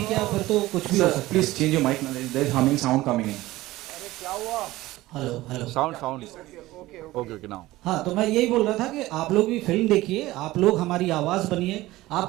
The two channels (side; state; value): left; quieter; 17.6 dB